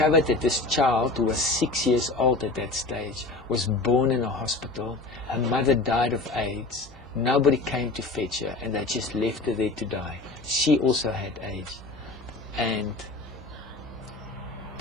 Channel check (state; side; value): quieter; right; 3.2 dB